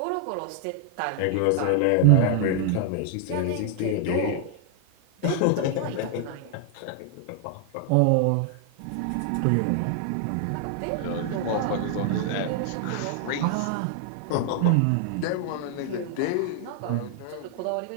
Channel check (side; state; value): both; different; correlation 0.00